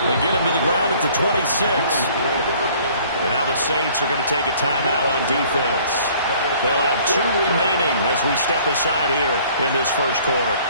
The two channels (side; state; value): both; inverted; correlation -0.55